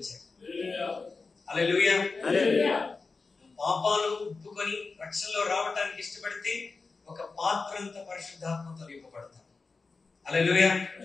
హల్లెలూయా. పాపాలు ఒప్పుకొని రక్షణలో రావటానికి ఇష్టపడితే ఒక పాత్రంత పరిశుద్ధాత్మతో నింపబడతాం. హల్లెలూయా.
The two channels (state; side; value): quieter; right; 4.2 dB